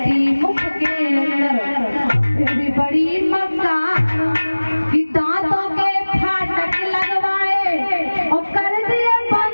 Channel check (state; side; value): inverted; both; correlation -1.00